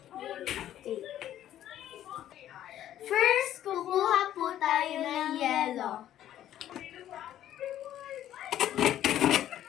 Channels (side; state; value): right; quieter; 12.0 dB